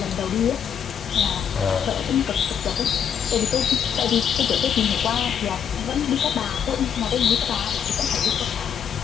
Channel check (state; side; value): quieter; right; 8.1 dB